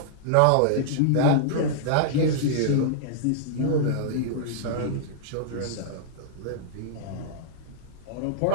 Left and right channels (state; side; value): different; both; correlation -0.01